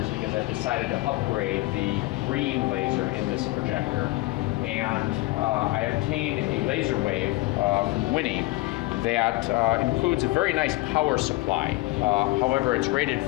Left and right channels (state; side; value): quieter; right; 20.4 dB